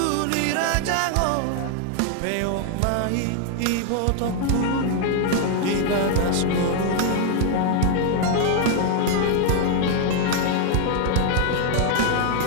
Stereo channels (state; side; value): different; both; correlation 0.00